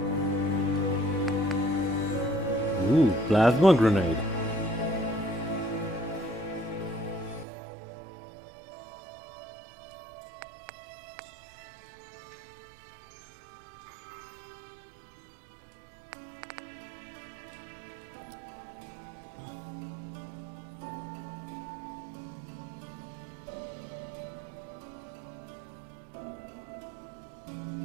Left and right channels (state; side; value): drops out; left; at 7.5 s